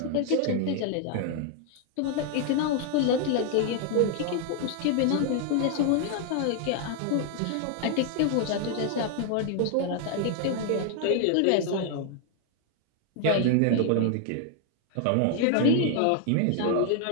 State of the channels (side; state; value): both; different; correlation 0.00